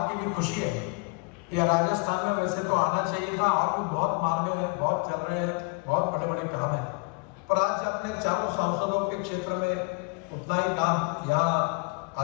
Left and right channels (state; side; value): quieter; right; 32.2 dB